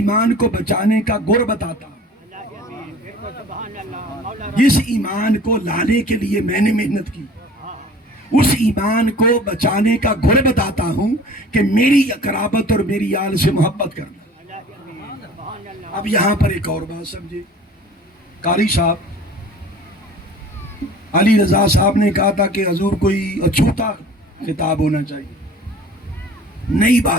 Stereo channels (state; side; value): normal; both; correlation 0.45